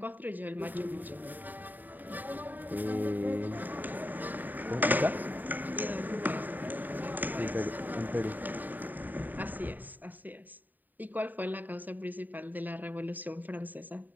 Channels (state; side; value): late; left; 0.087 ms